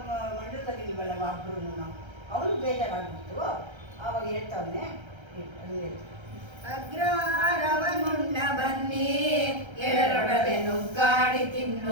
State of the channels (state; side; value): late; left; 1.3 ms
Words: ಮಂಡಲದಲ್ಲಿ ಇಲ್ವಲ್ಲ ಒಬ್ಬರು ನಾವು, ಅವನು ಬೇಜಾರಾಗ್ಬಿಟ್ಟು ಆವಾಗ ಹೇಳ್ತಾವನೆ. ಅಗ್ರಹಾರವನುಣ್ಣ ಬನ್ನಿ, ಎರಡೊಡವೆ ನುಗ್ಗಾಡಿ